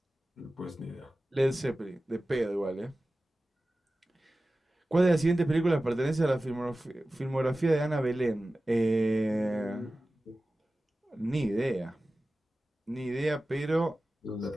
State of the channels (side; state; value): both; normal; correlation 0.96